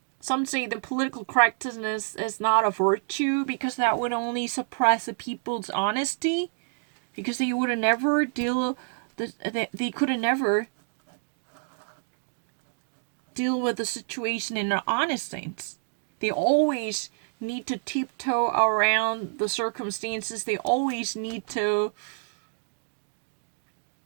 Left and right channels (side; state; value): left; silent; digital silence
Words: Some say the political correctness is not a virtue because that would only suppress the people's honesty, because they would never they could never deal with the situation in an honest sense. They always need to tiptoe around the circumstances. They always need to